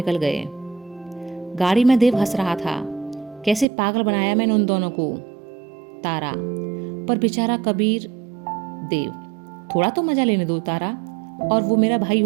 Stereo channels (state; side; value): drops out; left; at 3.7 s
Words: गए। गाड़ी में देव हंस रहा था। कैसे पागल बनाया मैंने उन दोनों को। तारा, पर बेचारा कबीर। देव, थोड़ा तो मजा लेने दो तारा। और वो मेरा भाई